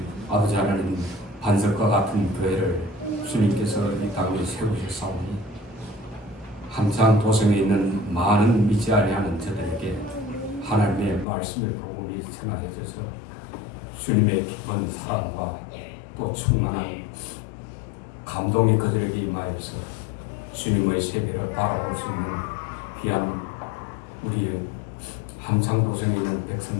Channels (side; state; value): right; drops out; at 11.2 s